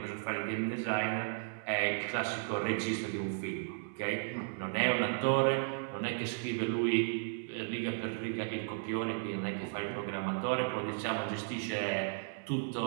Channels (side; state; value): left; silent; 55 dB below the other